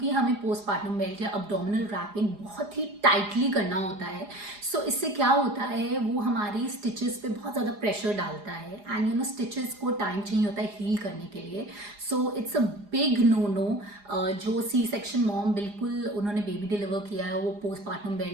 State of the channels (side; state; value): left; late; 4.9 ms